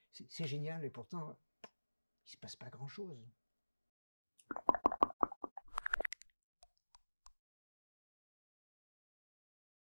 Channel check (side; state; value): both; inverted; correlation -1.00